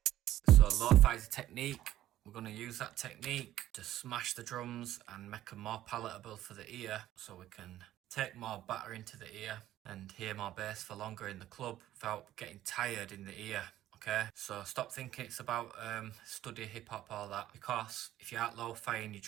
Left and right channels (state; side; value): quieter; left; 13.4 dB